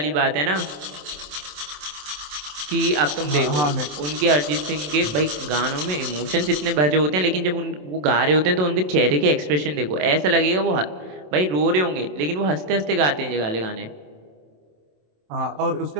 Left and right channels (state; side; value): late; left; 27 ms